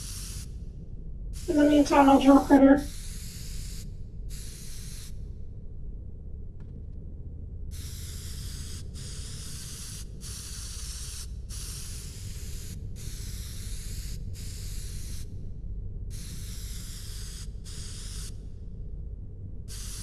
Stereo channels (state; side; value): identical; both; correlation 1.00